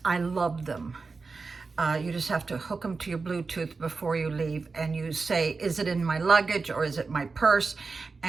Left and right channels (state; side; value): quieter; left; 4.3 dB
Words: I love them. You just have to hook them to your Bluetooth before you leave, and you say, is it in my luggage or is it my purse?